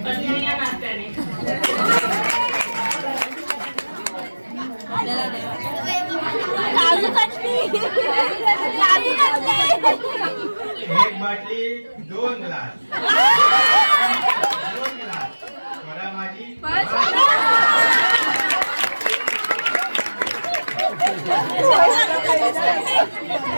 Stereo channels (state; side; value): inverted; both; correlation -1.00